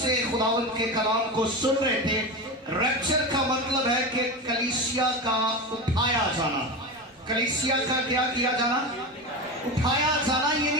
खुदावंद के कलाम को सुन रहे थे। रैप्चर का मतलब है कि कलीसिया का उठाया जाना। कलीसिया का क्या किया जाना? उठाया जाना,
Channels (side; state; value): both; normal; correlation 0.22